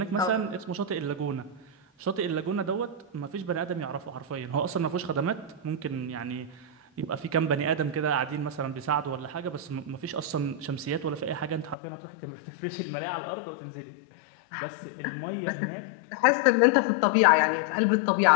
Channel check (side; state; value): right; drops out; at 11.8 s